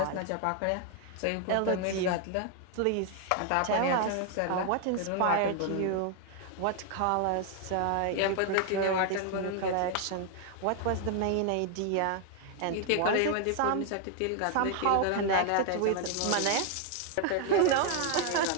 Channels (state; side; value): different; both; correlation 0.00